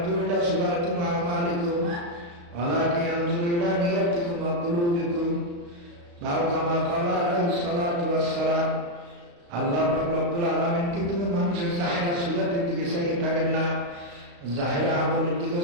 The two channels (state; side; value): late; left; 35 ms